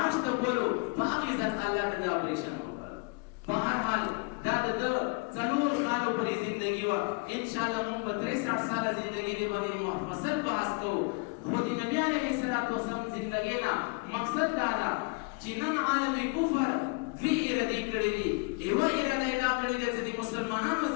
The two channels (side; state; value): right; quieter; 30.8 dB